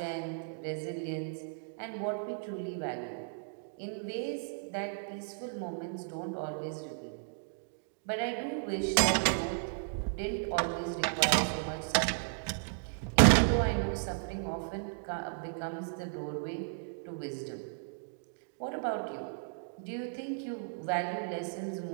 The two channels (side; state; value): left; silent; digital silence